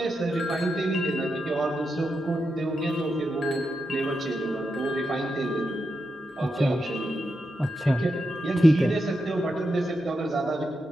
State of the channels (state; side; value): normal; both; correlation 0.86